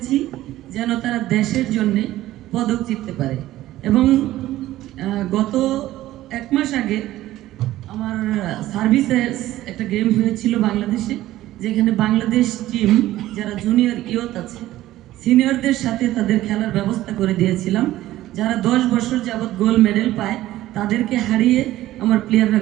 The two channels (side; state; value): left; quieter; 15.1 dB